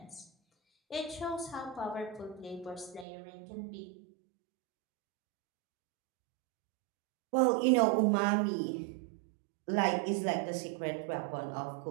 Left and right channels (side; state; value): left; drops out; at 3.1 s